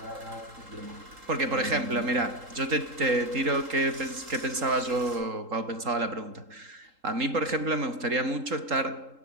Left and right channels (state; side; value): late; left; 3.8 ms